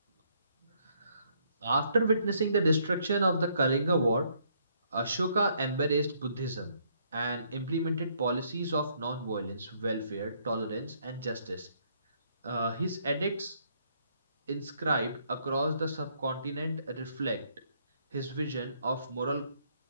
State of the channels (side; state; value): both; inverted; correlation -0.69